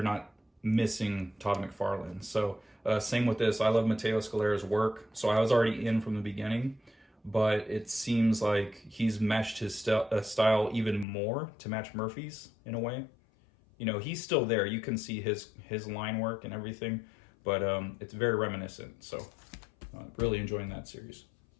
not missing Todd McFarlane. So same with this. I love Matteo Scalera's work, so I was already in from the beginning, but it seems like he's meshed his style even more to match Murphy's in a way. He's still there. You can see his line work and everything, but it's very reminiscent. So really enjoying that series.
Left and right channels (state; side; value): drops out; right; at 11.1 s